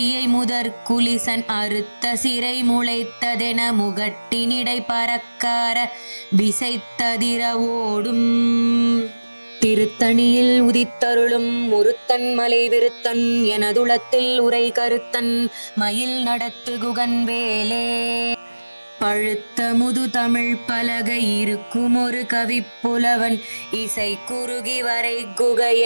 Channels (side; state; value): both; inverted; correlation -1.00